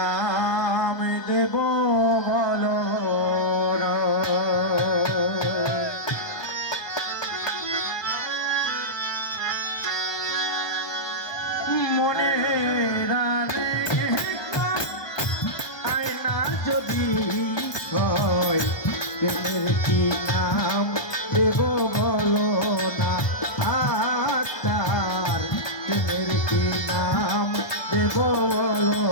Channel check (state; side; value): late; right; 1.2 ms